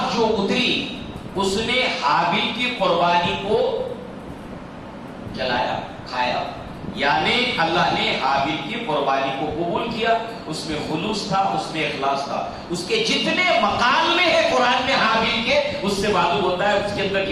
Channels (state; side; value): identical; both; correlation 1.00